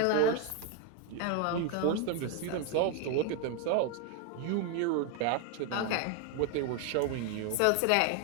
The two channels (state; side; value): different; both; correlation 0.01